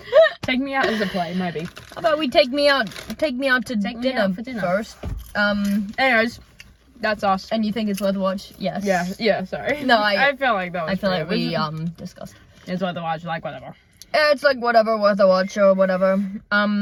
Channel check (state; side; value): identical; both; correlation 1.00